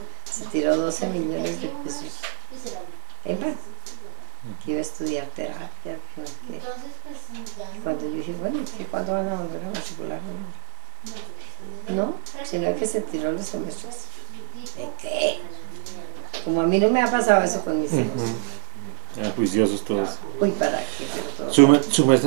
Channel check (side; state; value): left; silent; digital silence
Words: se tiró 12 millones de pesos en vano, que iba a estudiar terapia, que no sé qué. Cuando yo dije, bueno, ¿cuándo van a volver a matricular? No, sino que se tiró los semestres. ¿De qué? Como a mí no me ha pasado eso con mis hijos. Juiciosos todos. Uy, ¿para qué? Pero todo. ¿Su